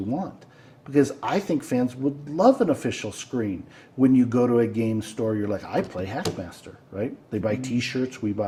want. Because I think fans would love an official screen. When you go to a game store, you're like, I play HackMaster, right? They buy T-shirts, we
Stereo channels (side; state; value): both; identical; correlation 1.00